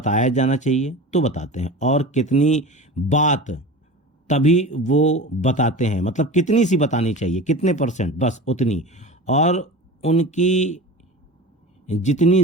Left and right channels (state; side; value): normal; both; correlation 0.32